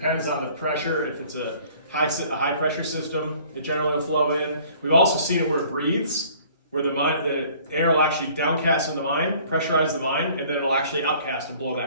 on the pressure. If it's a high pressure system, it generally will flow in. We've also seen it where it breathes, where the air will actually downcast in the mine, pressurize the mine, and then it'll actually outcast and blow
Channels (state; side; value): inverted; both; correlation -0.54